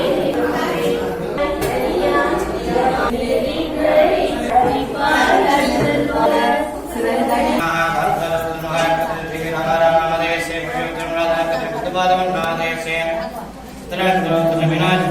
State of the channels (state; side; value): identical; both; correlation 1.00